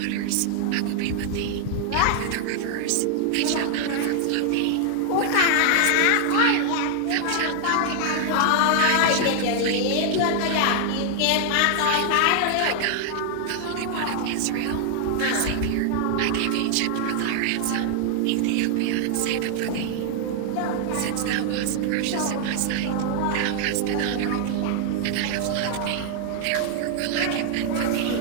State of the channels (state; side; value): different; both; correlation 0.00